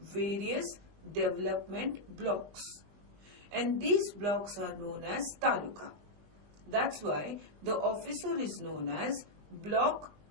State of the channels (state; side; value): late; left; 20 ms